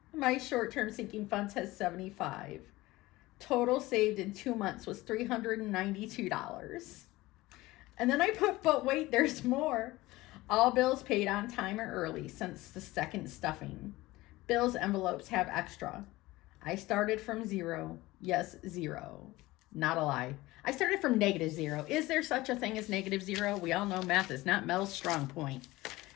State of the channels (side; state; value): right; quieter; 19.2 dB